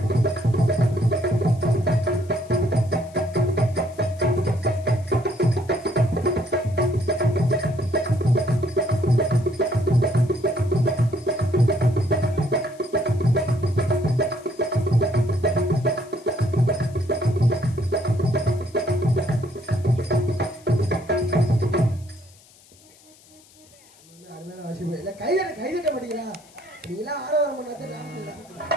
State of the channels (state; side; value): noise; left; hiss, 27 dB below the sound